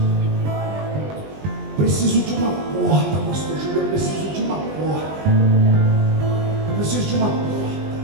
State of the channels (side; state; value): left; late; 20 ms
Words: Preciso de uma porta, pastor Júlio. Eu preciso de uma porta. Eu preciso de uma porta.